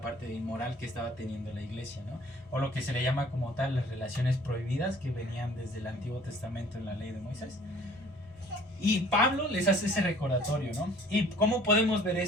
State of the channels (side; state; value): both; normal; correlation 0.53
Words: parte de inmoral que estaba teniendo la iglesia, ¿no? O lo que se le llama como tal las relaciones prohibidas que venían desde el Antiguo Testamento en la ley de Moisés. Y Pablo les hace ese recordatorio, ¿no? ¿Y cómo podemos ver